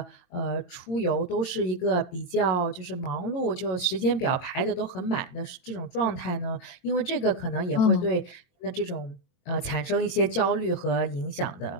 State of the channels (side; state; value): right; late; 22 ms